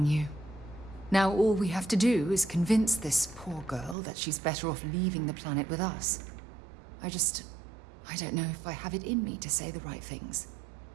you. Now all we have to do is convince this poor girl that she's better off leaving the planet with us. I don't know if I have it in me to say the right things.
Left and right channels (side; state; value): left; drops out; at 4.0 s